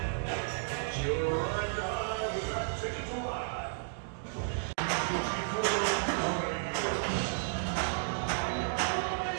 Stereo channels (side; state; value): left; silent; digital silence